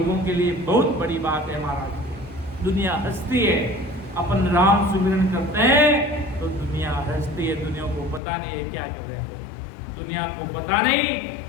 के लिए बहुत बड़ी बात है महाराज। दुनिया हंसती है, अपन राम सुमिरन करते हैं तो दुनिया हंसती है। दुनिया को पता नहीं है क्या कर रहे हैं, दुनिया को पता नहीं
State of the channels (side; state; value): right; drops out; at 8.2 s